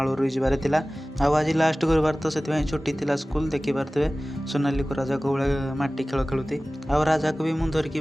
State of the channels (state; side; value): normal; both; correlation 0.97